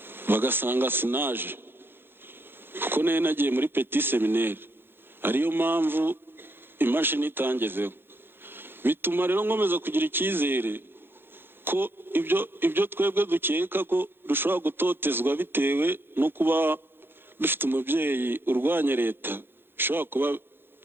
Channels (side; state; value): left; late; 0.10 ms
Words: bagasanga sinaje kuko nagiye muri Petit Seminaire, ariyo mpamvu imashini itangezeho. Bituma rero nkomeza kugira icyizere ko ibyo twebwe dukeka ko dushobora gutotezwa bitewe no kuba dufite umubyeyi urwanya leta bishobora kuba